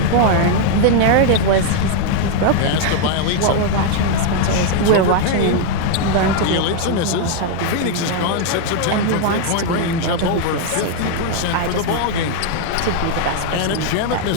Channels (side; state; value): both; different; correlation 0.00